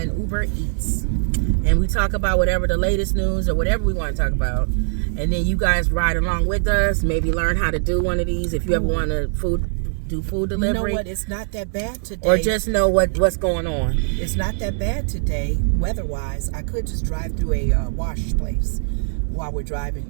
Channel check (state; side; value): silent; left; digital silence